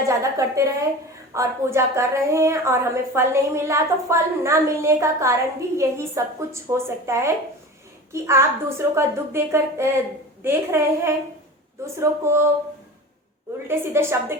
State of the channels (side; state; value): both; normal; correlation 0.34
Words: ज्यादा करते रहे और पूजा कर रहे हैं और हमें फल नहीं मिल रहा, तो फल ना मिलने का कारण भी यही सब कुछ हो सकता है कि आप दूसरों का दुख देख रहे हैं, दूसरों को उल्टे सीधे शब्द